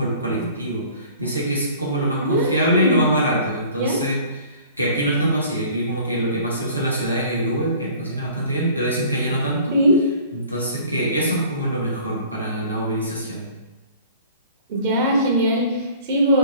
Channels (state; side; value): inverted; both; correlation -0.49